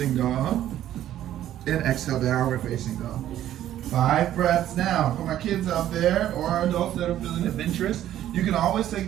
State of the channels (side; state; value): left; quieter; 12.2 dB